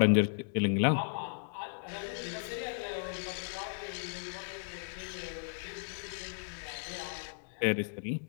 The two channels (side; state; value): right; silent; digital silence